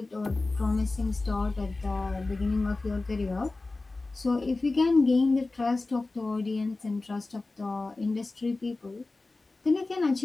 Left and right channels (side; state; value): right; quieter; 3.3 dB